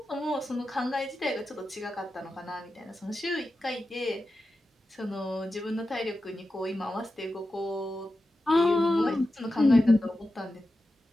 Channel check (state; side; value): normal; both; correlation 0.92